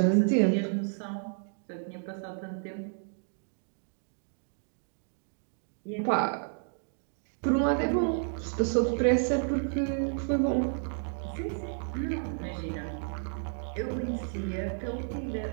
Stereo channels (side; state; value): left; silent; digital silence